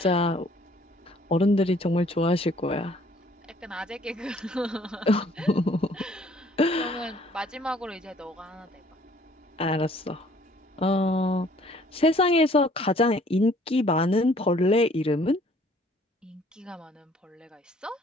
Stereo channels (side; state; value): both; normal; correlation 0.59